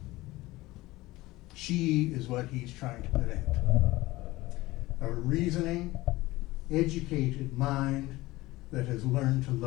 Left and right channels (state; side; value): quieter; right; 19.1 dB